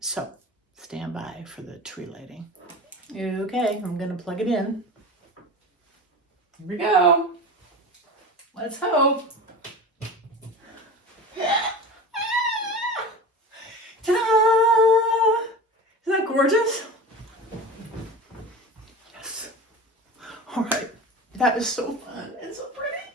so stand by for the tree lighting. Okay, I'm gonna plug it in. Here we go. Let's hope. Ta-da! Isn't that gorgeous? Yes. All right. That is so fun and so pretty.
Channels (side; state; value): both; normal; correlation 0.32